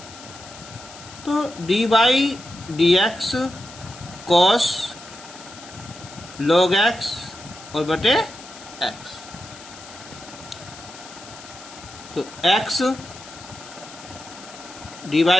तो d by d x cos log x और बटे x, तो x d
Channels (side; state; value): left; noise; hiss, 17 dB below the sound